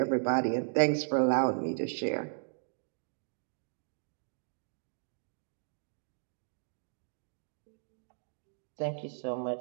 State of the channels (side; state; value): left; silent; digital silence